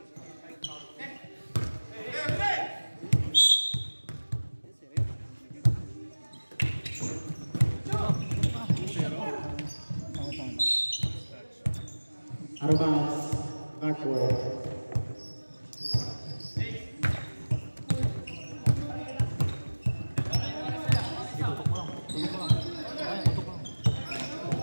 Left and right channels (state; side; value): inverted; both; correlation -1.00